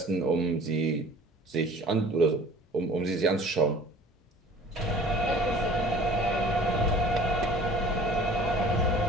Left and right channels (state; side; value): normal; both; correlation 0.48